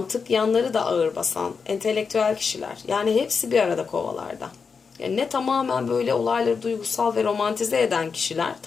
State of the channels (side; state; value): right; quieter; 5.5 dB